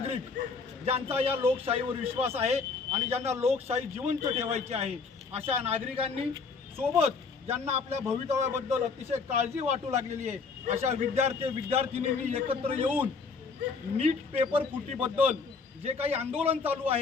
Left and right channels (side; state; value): right; quieter; 4.8 dB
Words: ज्यांचा या लोकशाहीवर विश्वास आहे आणि ज्यांना लोकशाही जिवंत ठेवायची आहे, अशा नागरिकांनी सोबत ज्यांना आपल्या भवितव्याबद्दल अतिशय काळजी वाटू लागलेली आहे, अशा विद्यार्थिनींनी एकत्र येऊन नीट पेपर फुटीबद्दल जे काही आंदोलन चालू